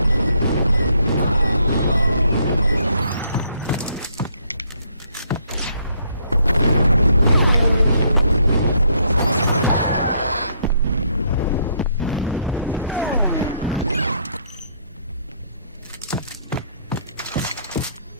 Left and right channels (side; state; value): both; inverted; correlation -0.70